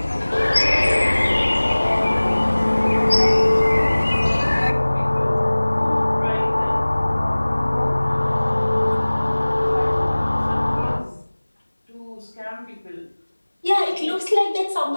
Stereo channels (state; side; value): inverted; both; correlation -1.00